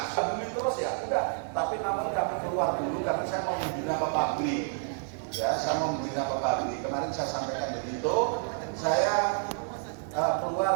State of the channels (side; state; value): left; silent; 58 dB below the other